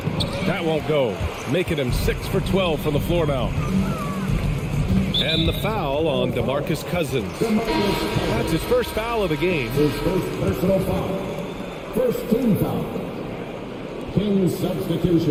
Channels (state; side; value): identical; both; correlation 1.00